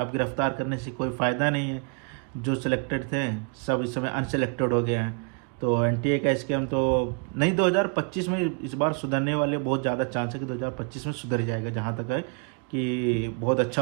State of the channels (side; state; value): left; quieter; 38.8 dB